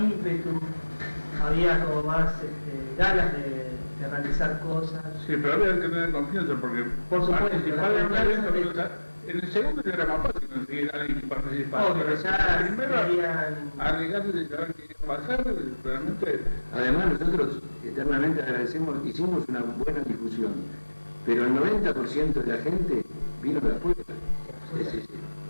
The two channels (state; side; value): inverted; both; correlation -1.00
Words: había como más ganas de realizar cosas. Sí, pero había que tener confianza porque Por supuesto, participar la en un evento, confianza pero, o sea, en el segundo ya era más fácil conseguir a alguien que participara. Obvio, Pero ya el primero, serían... arriesgarse de saber qué iba a pasar, realmente. Además nosotros eternamente agradecemos, hicimos una buena difusión, pero el 90% de la gente vino de afuera.